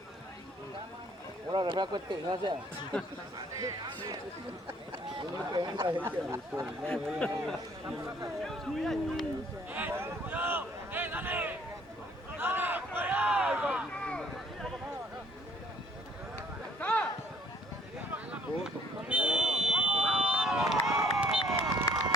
Ahora refresco este, gracias. Dale.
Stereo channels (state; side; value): normal; both; correlation 0.60